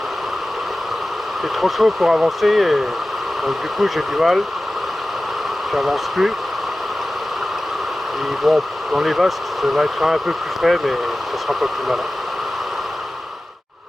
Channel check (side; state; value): both; normal; correlation 0.96